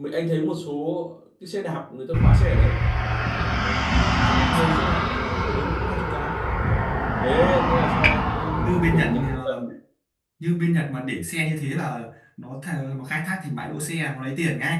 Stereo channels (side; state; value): both; identical; correlation 1.00